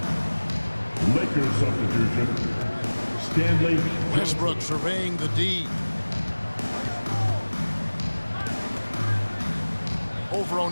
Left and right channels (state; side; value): inverted; both; correlation -1.00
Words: Lakers substitution. Stanley Westbrook surveying the D. Over